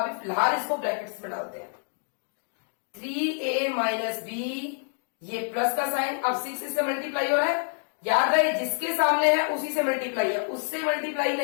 फिलहाल इसको ब्रैकेट्स में डालते हैं। 3a माइनस b, ये प्लस का साइन, अब 6 इससे मल्टीप्लाई हो रहा है। याद रहे जिसके सामने है उसी से मल्टीप्लाई है, उससे मल्टीप्लाई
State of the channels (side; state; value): right; silent; 60 dB below the other